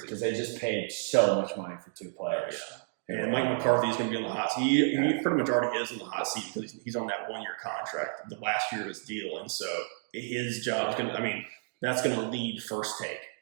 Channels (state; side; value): silent; left; 57 dB below the other